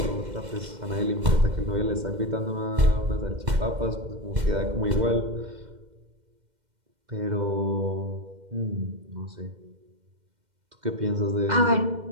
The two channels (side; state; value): left; late; 2.1 ms